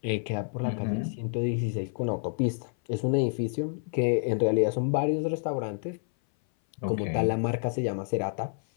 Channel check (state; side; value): silent; right; 57 dB below the other